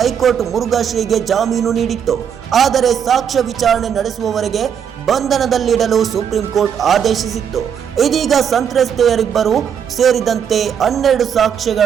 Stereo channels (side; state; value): left; quieter; 8.1 dB